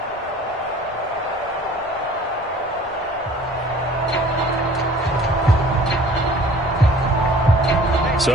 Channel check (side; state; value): both; normal; correlation 0.49